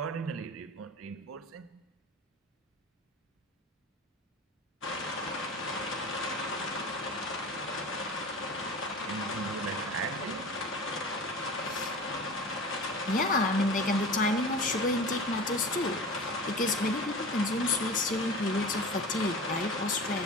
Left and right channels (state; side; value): normal; both; correlation 0.34